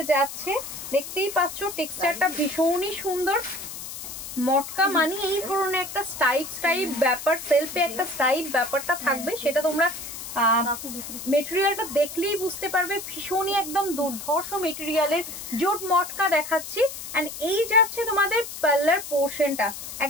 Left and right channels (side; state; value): left; noise; hiss, 10 dB below the sound